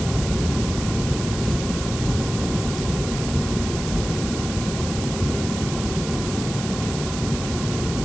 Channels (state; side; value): noise; right; hiss, 9 dB below the sound